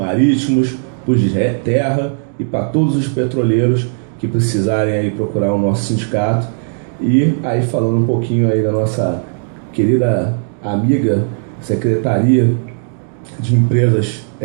para os de terra e para todos os petroleiros que precisarem aí procurar o nosso sindicato. E aí, falando um pouquinho aí da nossa querida amiga Secretaria de Empresas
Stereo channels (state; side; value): silent; left; digital silence